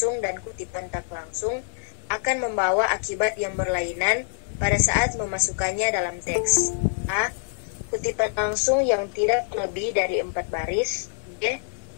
dan kutipan tak langsung akan membawa akibat yang berlainan pada saat memasukkannya dalam teks. A. Kutipan langsung yang tidak lebih dari 4 baris. B.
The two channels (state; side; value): silent; right; digital silence